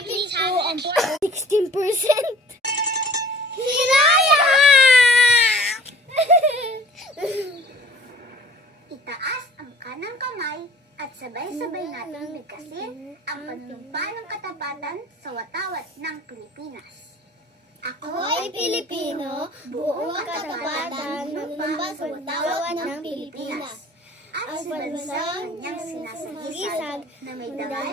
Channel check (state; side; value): normal; both; correlation 0.48